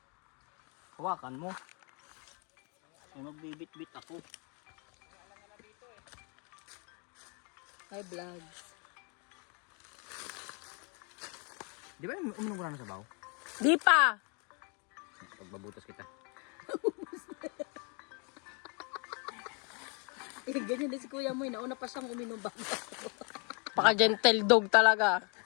Hawakan mo. Ay, magbibit-bit ako. Hi, vlogs. Di ba uminom ko na ng sabaw? Di pa. Pagbabutas kita. Ganyan din si kuya mo. Nauna pa siyang uminom ba? Paka-gentle dog talaga.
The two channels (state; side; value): quieter; right; 34.8 dB